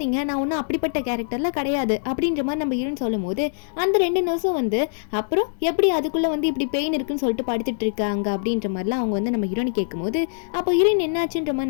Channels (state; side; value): silent; right; digital silence